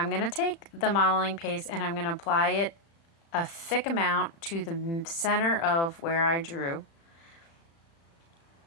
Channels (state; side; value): late; right; 36 ms